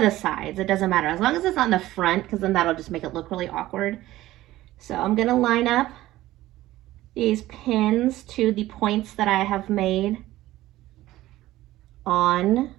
the sides, it doesn't matter, as long as it's on the front, because then that'll just make it look really awkward. So I'm gonna line up these pins to the points that I have made on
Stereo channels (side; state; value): left; quieter; 16.0 dB